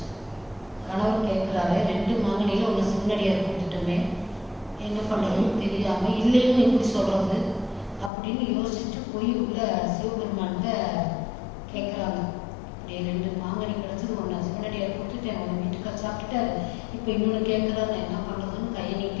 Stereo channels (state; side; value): drops out; right; at 8.1 s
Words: கணவர் கேட்குறாரு, 2 மாங்கனியில் ஒன்று சிவனடியார் கொடுத்துட்டோமே, என்ன பண்ணுறதுன்னு தெரியாமல் இல்லைன்னு எப்படி சொல்கிறது அப்படின்னு யோசிச்சுட்டு போய் உள்ள சிவபெருமான்கிட்ட கேட்குறாங்க. இப்படி 2 மாங்கனி கிடச்சது, ஒன்று சிவனடியார் கொடுத்துட்டேன், உங்கள் வீட்டுக்கார சாப்பிட்டுட்டாரு, இப்போ இன்னொன்று கேட்குறாரு, நான் என்ன பண்ணுறதுன்னு கையை